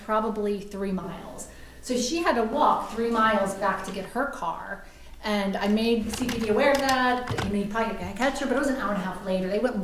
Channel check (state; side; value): identical; both; correlation 1.00